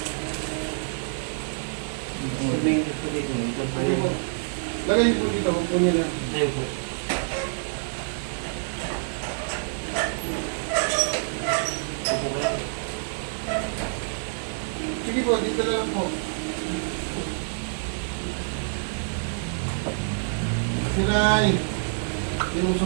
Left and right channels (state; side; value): silent; left; 60 dB below the other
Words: Sabihin ko dito. Ito pa Sige po. Lagay niyo po dito. Huwag po niyo na. Ayun po. Upo kayo. Sige po, dito na lang po. Siray.